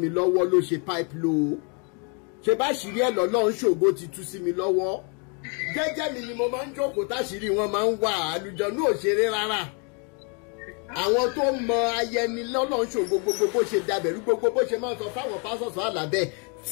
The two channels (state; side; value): quieter; right; 36.9 dB